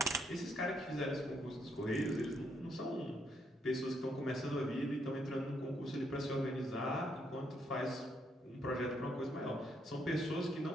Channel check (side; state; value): both; normal; correlation 0.74